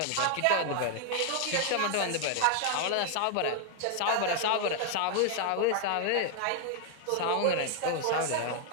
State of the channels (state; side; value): different; both; correlation 0.00